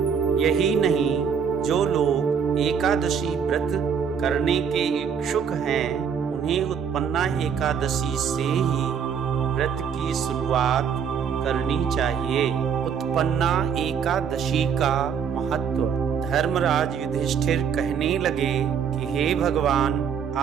यही नहीं, जो लोग एकादशी व्रत करने के इच्छुक हैं उन्हें उत्पन्ना एकादशी से ही व्रत की शुरुआत करनी चाहिए। उत्पन्ना एकादशी का महत्व। धर्मराज युधिष्ठिर कहने लगे कि हे भगवान,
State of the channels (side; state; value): left; quieter; 7.1 dB